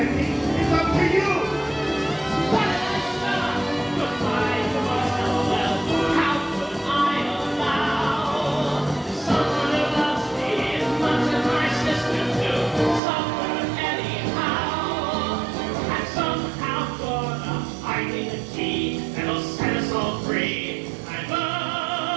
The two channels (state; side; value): drops out; left; at 13.0 s